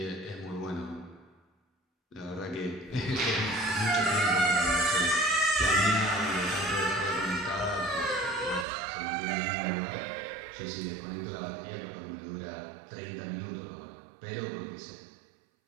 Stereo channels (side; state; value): left; drops out; at 8.7 s